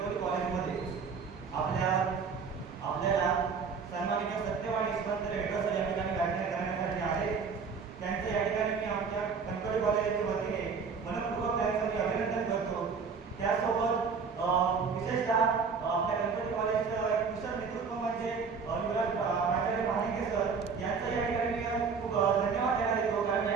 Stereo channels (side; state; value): left; quieter; 5.5 dB